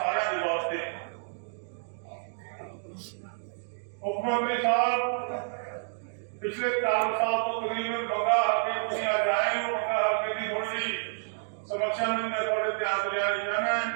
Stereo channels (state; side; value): silent; left; digital silence